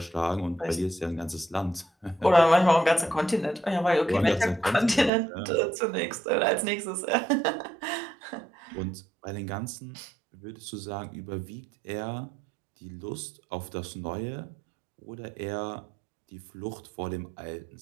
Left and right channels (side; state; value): left; drops out; at 5.1 s